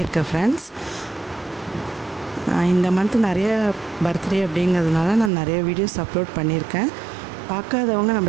ஃப்ரெண்ட்ஸ். இந்த மந்த் நிறைய பர்த்டே அப்படிங்கிறதுனால நான் நிறைய வீடியோஸ் அப்லோட் பண்ணியிருக்கேன். பார்க்காதவங்க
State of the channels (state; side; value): drops out; left; at 5.3 s